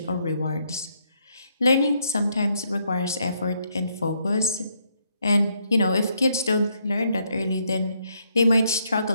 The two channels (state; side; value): inverted; both; correlation -0.73